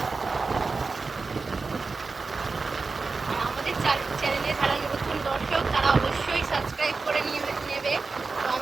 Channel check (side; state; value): left; quieter; 4.2 dB